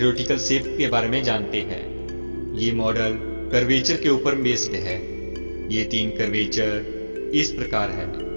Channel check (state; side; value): inverted; both; correlation -1.00